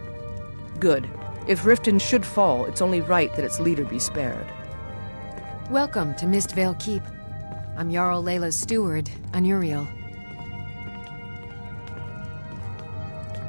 Good. If Riften should fall, it's only right that its leader be spared. Welcome to Mistvale Keep. I'm Jarl Leila's steward, Anuriel.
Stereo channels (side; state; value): both; inverted; correlation -1.00